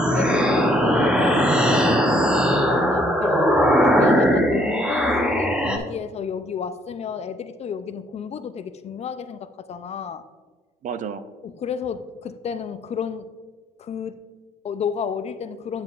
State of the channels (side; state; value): both; normal; correlation 0.66